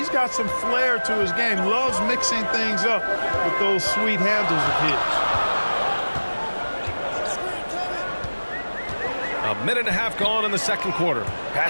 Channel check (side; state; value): both; inverted; correlation -1.00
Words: got some flair to his game. Loves mixing things up with those sweet handles of his. A minute and a half gone in the second quarter.